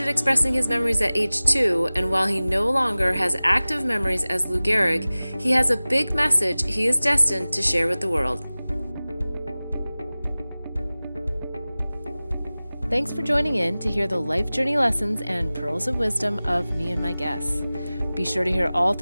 expressing his memories at age 2, and while he no longer has active memories as Lou Gehrig, he has a big message he is destined to share with the world. Thanks for joining in to hear the life journey lessons and pearls of wisdom of me and my guests. Be sure to hear all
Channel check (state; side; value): inverted; both; correlation -0.98